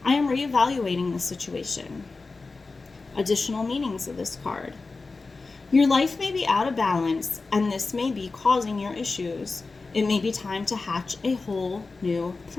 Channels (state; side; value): quieter; right; 3.9 dB